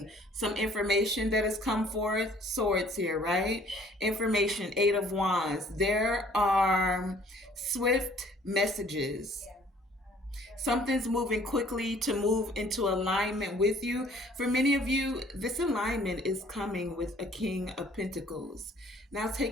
some information that has come forth. Swords here, right? Information, Eight of Wands. There are swift messages. Something's moving quickly to move into alignment with you. For many of you, this alignment is coming with a King of Pentacles. Now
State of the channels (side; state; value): both; normal; correlation 0.57